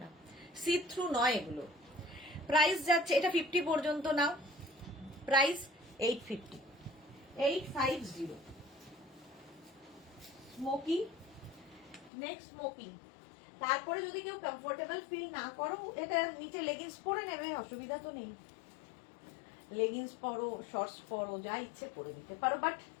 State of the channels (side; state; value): right; drops out; at 12.1 s